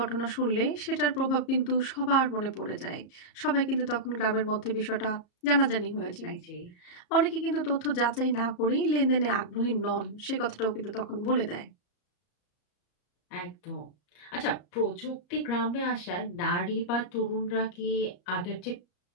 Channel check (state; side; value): late; right; 34 ms